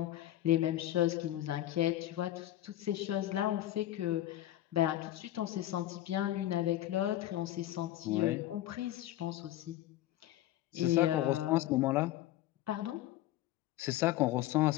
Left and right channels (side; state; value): right; quieter; 14.0 dB